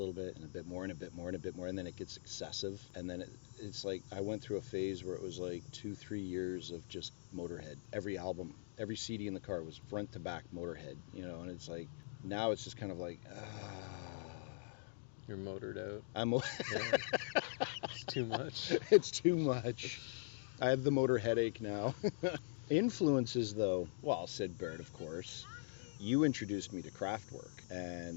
bit and a bit more and a bit more and a bit more, and then it gets excessive. And then it's like, I went through a phase where it was like 2-3 years of just Motorhead. Every album, every CD in the car was front to back Motorhead, and it's like, now it's just kind of like, You're motored out. It's too much. It's too much. I have the motor headache now. Influences, though, well, Sid Barrett, of course. You introduced me to Kraftwerk,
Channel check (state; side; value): silent; right; digital silence